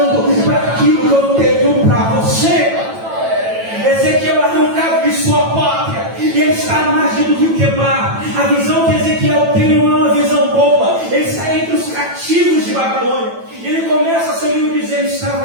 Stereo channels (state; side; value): late; left; 9.0 ms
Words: para aquilo que eu tenho para você. Ezequiel é arrancado de sua pátria e ele está à margem do rio Quebar. A visão que Ezequiel tem não é uma visão boa. Ele está entre os cativos de Babilônia. E ele começa seu livro dizendo: